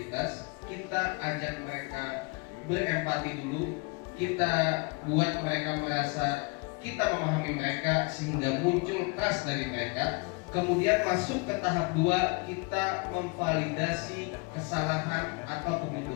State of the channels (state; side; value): quieter; right; 29.6 dB